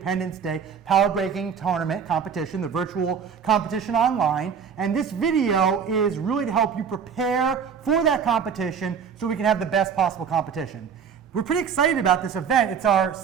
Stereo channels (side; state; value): left; quieter; 6.9 dB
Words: Day Power Breaking Tournament competition, the virtual competition online. And this video is really to help you prepare for that competition so we can have the best possible competition. We're pretty excited about this event. It's our